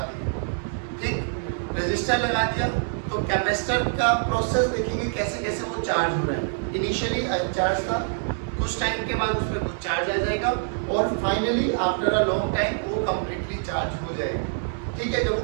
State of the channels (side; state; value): left; silent; 61 dB below the other